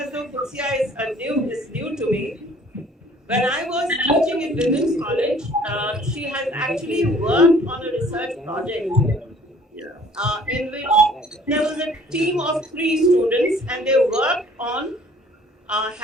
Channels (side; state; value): both; normal; correlation 0.55